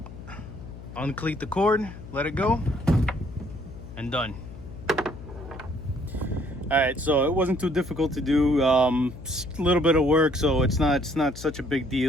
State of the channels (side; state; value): left; noise; hum, 14 dB below the sound